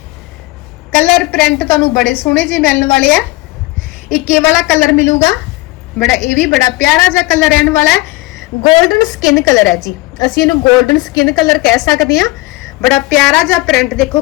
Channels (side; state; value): right; quieter; 21.0 dB